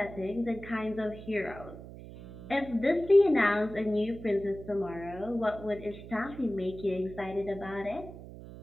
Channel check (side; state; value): right; noise; hum, 14 dB below the sound